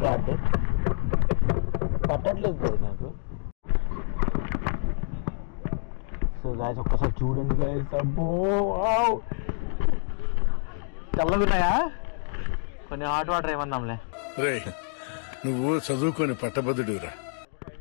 గార్డ్ పట్టట్లేదు నాకు. సో గాయస్, ఒక్కసారి చూడండి గాయస్. అబ్బో, చల్లగున్నాయా? కొన్ని హాట్ వాటర్ ఏమన్నాంలే. రే, నువ్వు చదువుకొని పట్టభద్రుడురా.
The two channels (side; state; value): right; silent; 58 dB below the other